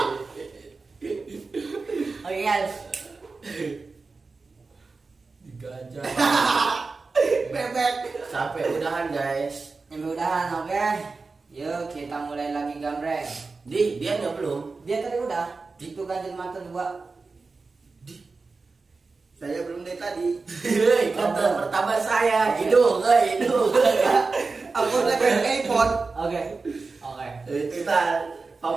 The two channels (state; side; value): quieter; left; 4.1 dB